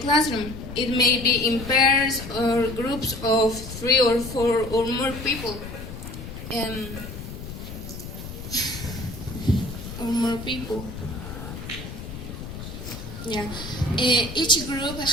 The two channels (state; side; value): noise; left; rumble, 10 dB below the sound